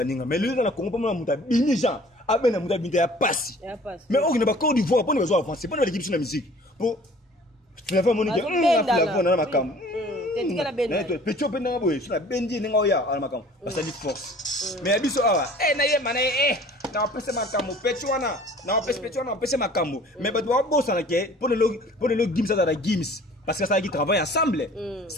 mais lui na Congo pas muta bini Jean abena muta binta ya passe mais on ne ba Côte d'Ivoire pour ne besoin avancer pour ne l'équipe sur la musique pour la femme monique la na makam petit peu na boy sur la bendi nga oya ala makam parce que force mais abiso awa na ye mana na pese makam petit wana na pese makam mais ba doit bossa na ke pour le Gims à la Gims parce que ça qui travaille ensemble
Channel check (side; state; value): both; normal; correlation 0.49